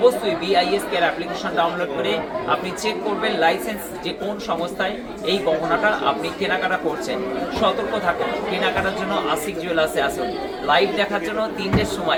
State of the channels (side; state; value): both; identical; correlation 1.00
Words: BISK এর অ্যাপ্লিকেশন ডাউনলোড করে আপনি চেক করবেন লাইসেন্স যে কোন সংস্থায় এই গহনাটা আপনি কেনাকাটা করছেন। সতর্ক থাকুন, কেনাকাটার জন্য আশিক জুয়েলার্সে আসুন। লাইভ দেখার জন্য 3টের